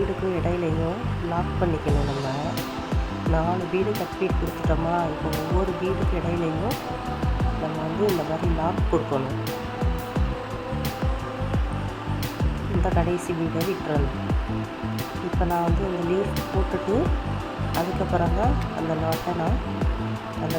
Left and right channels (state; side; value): identical; both; correlation 1.00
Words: இடையிலையும் லாக் பண்ணிக்கணும். நம்ம 4 பீடு கட் பீட் கொடுத்துட்டோமா, இப்போ ஒவ்வொரு பீடுக்கு இடையிலையும் நம்ம வந்து இந்த மாதிரி லாக் கொடுக்கணும். இந்த கடைசி பீடை விட்டுறணும். இப்போ நான் வந்து இந்த லீஃப் போட்டுட்டு அதுக்கப்புறம் தான் அந்த நாட்டை நான் அந்த